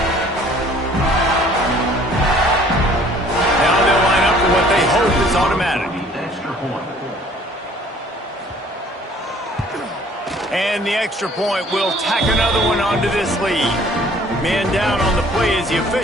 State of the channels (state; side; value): normal; both; correlation 0.55